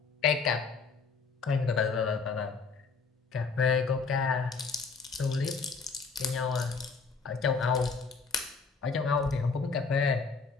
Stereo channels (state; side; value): quieter; right; 4.9 dB